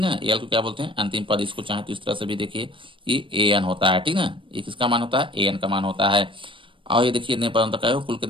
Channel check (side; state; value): left; late; 0.25 ms